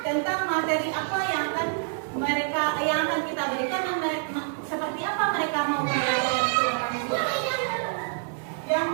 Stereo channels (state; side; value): silent; left; digital silence